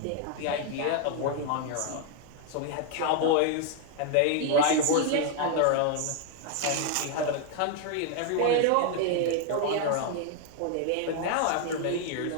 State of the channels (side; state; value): both; different; correlation 0.00